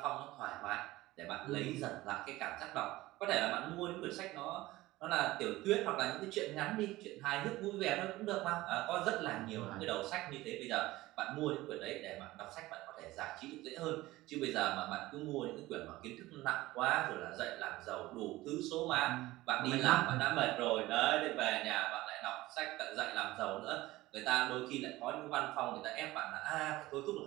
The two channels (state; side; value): quieter; left; 18.1 dB